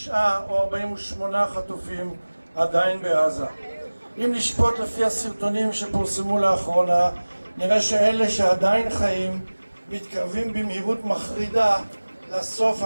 או 48 חטופים עדיין בעזה. אם נשפוט לפי הסרטונים שפורסמו לאחרונה, נראה שאלה שעדיין חיים מתקרבים במהירות מחרידה לסוף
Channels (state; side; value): inverted; both; correlation -1.00